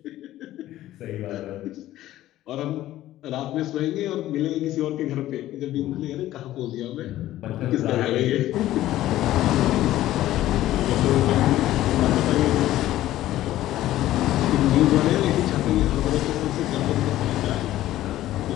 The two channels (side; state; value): right; quieter; 14.4 dB